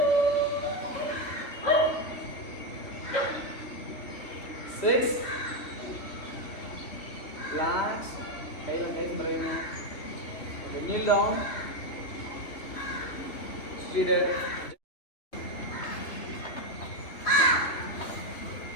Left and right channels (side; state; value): right; late; 3.0 ms